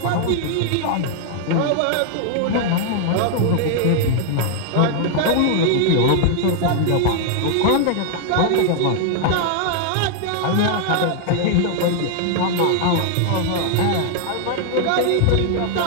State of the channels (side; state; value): both; different; correlation 0.00